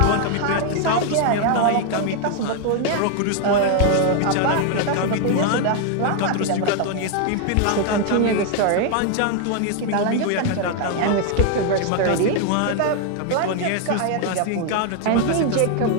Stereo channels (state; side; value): different; both; correlation 0.00